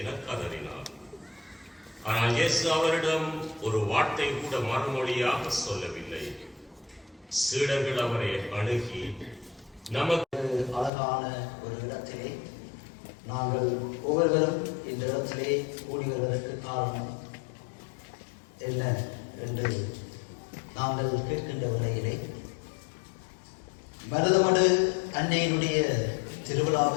கதறினார். ஆனால் இயேசு அவரிடம் ஒரு வார்த்தை கூட மறுமொழியாக சொல்லவில்லை. சீடர்கள் அவரை அணுகி, நமக்கு அழகான ஒரு இடத்திலே நாங்கள் ஒவ்வொருவரும் இந்த இடத்திலே கூடி வருவதற்கு காரணம் என்ன என்று நாங்கள் கேட்கின்ற வகையிலே, மருதமடு அன்னையினுடைய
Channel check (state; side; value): drops out; right; at 10.9 s